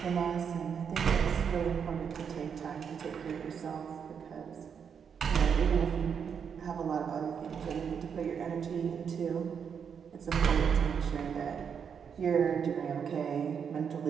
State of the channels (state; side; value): quieter; left; 7.1 dB